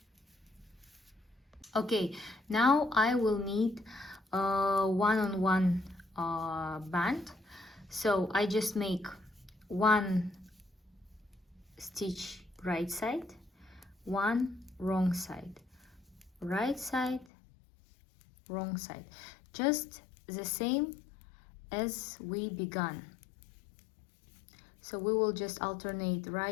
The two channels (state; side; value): drops out; right; at 17.2 s